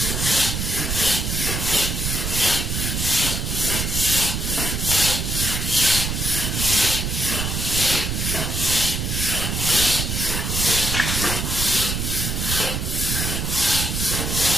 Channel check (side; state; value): right; noise; rumble, 1 dB below the sound